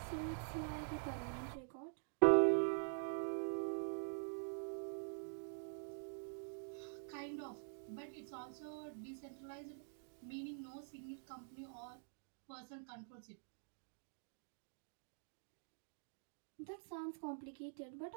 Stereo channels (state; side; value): silent; left; digital silence